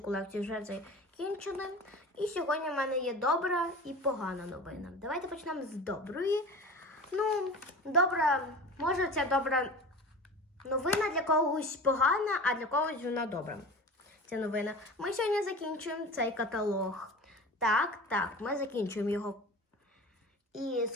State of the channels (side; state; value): both; normal; correlation 0.35